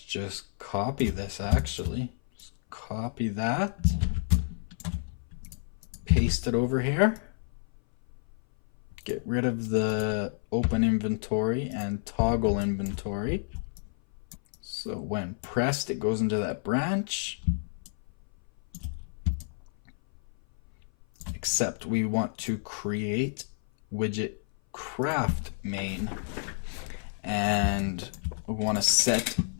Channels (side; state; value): right; silent; 56 dB below the other